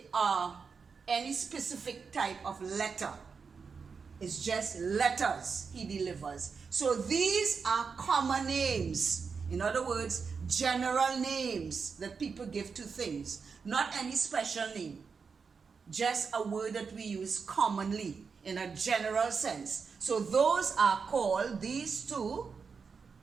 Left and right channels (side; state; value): left; quieter; 5.4 dB